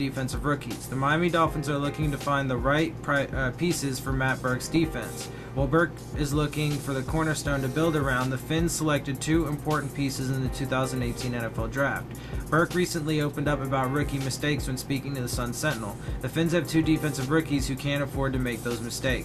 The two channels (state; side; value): identical; both; correlation 1.00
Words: rookies. The Miami Dolphins are looking to find the right pieces for Matt Burke's defense. While Burke is looking for the cornerstone to build around, the Phins selected 2 important pieces in the 2018 NFL Draft. Burke recently opened up about rookie mistakes when speaking to the Sun-Sentinel. The Phins have 2 defensive rookies who can't afford to make those